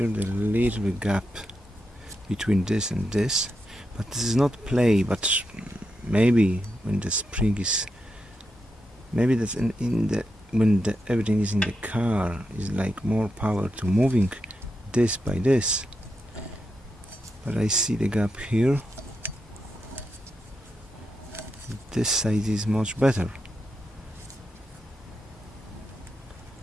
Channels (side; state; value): both; normal; correlation 0.86